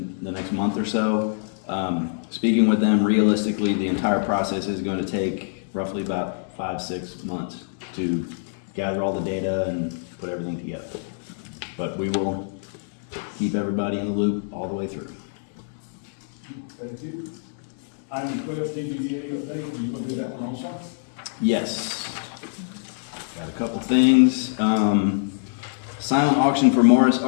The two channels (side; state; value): right; silent; digital silence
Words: the next month or so. Speaking with them, realistically, the entire process is going to take roughly about 5-6 months to gather all the data and put everything together. But we will keep everybody in the loop all the way through. Thank you. Item 12, TBDA update, you gonna do that one also? Yes. Got a couple things. Silent auction for Morris